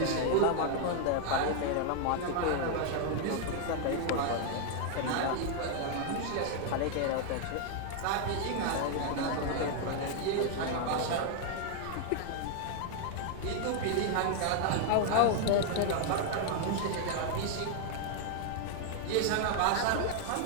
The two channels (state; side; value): different; both; correlation 0.00